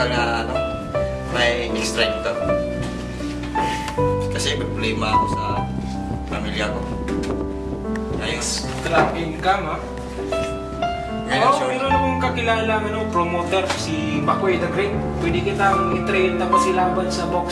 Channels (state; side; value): identical; both; correlation 1.00